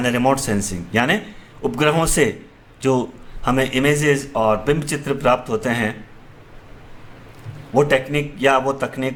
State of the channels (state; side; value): identical; both; correlation 1.00